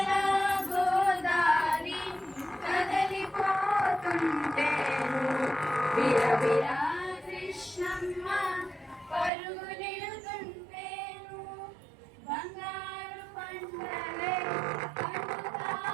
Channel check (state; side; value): drops out; left; at 9.3 s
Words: గోదారి కదలిపోతుంటే విరవిరా కృష్ణమ్మ పరుగులెడుతుంటేను బంగారు పంటలే